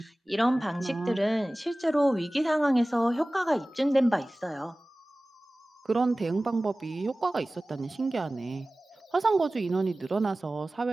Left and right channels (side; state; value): both; normal; correlation 0.98